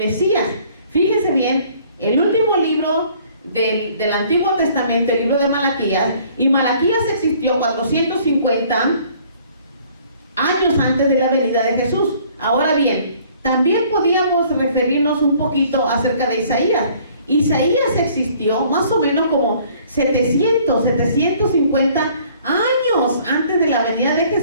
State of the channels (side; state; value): both; inverted; correlation -0.57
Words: Fíjense bien, el último libro del Antiguo Testamento, el libro de Malaquías, y Malaquías existió 450 años antes de la venida de Jesús. Ahora bien, también podíamos referirnos un poquito acerca de Isaías. Isaías existió más o menos como 750 años antes de la venida de